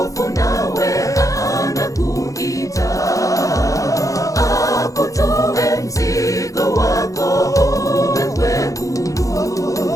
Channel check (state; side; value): late; right; 0.16 ms